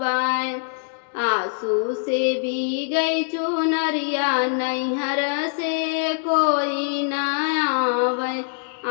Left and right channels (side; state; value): right; silent; 63 dB below the other